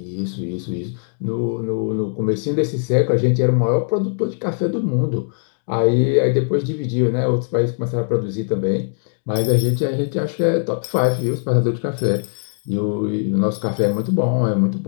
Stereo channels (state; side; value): silent; right; digital silence